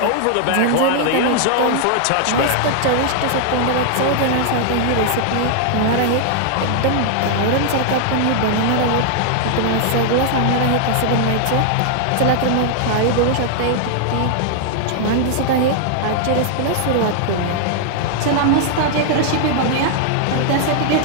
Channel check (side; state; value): both; different; correlation 0.00